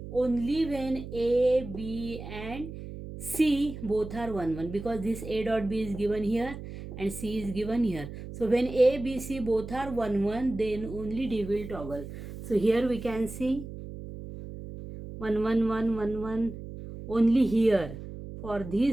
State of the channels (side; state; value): right; noise; hum, 11 dB below the sound